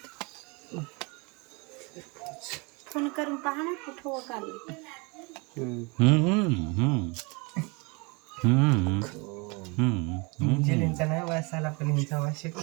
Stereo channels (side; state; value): left; quieter; 29.2 dB